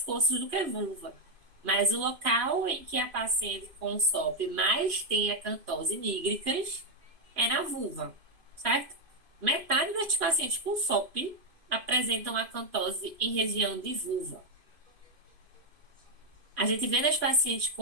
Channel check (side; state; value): left; late; 2.5 ms